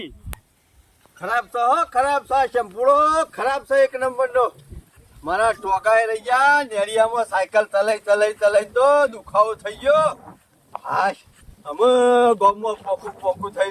ખરાબ છે હો, ખરાબ છે શંભુડો, ખરાબ છે એક નંબરનો. મારા ટોકાએ રહી ગયા નેરિયામાં, સાયકલ ચલાઈ તો દુખાવો થઈ ગયો. હાશ, અમે ગામમાં પોકું થઈ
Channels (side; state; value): both; identical; correlation 1.00